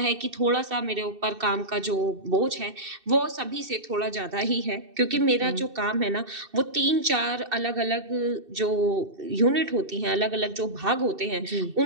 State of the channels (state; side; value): late; left; 2.6 ms